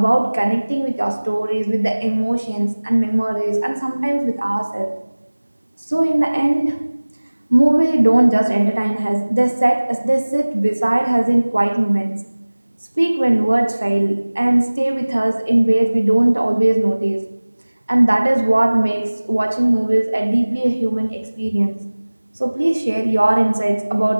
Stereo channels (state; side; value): inverted; both; correlation -1.00